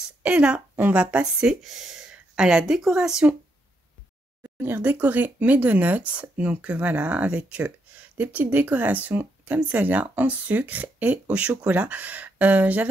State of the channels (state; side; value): normal; both; correlation 0.78